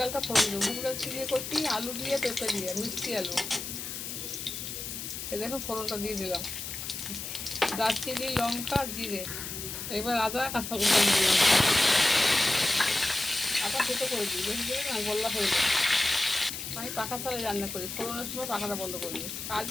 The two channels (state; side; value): noise; left; hiss, 7 dB below the sound